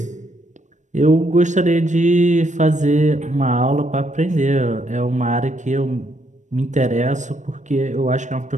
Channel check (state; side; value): late; left; 0.35 ms